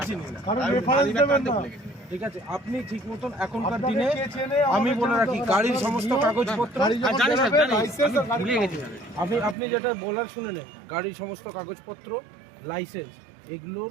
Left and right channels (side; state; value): left; drops out; at 9.6 s